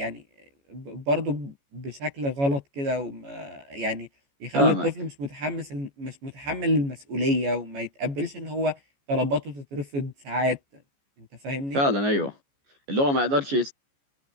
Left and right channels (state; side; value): late; left; 14 ms